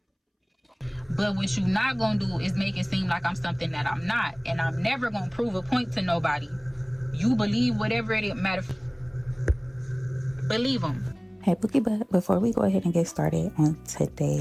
But what you not gonna do is make it seem like I'm something that I'm not, and I'm never gonna prove a point to nobody. You believe whatever it matter. Believe them. Hey BookieButt, before we go ahead and get started on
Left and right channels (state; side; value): identical; both; correlation 1.00